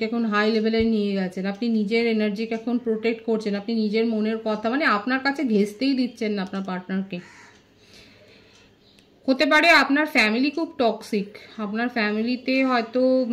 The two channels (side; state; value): both; identical; correlation 1.00